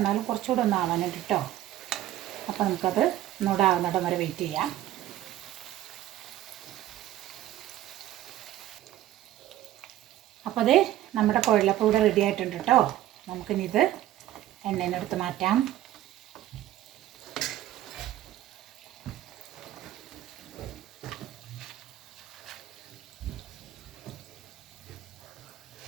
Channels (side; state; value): left; quieter; 13.6 dB